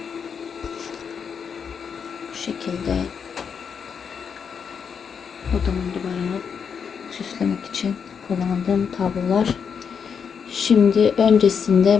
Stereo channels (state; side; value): quieter; right; 6.7 dB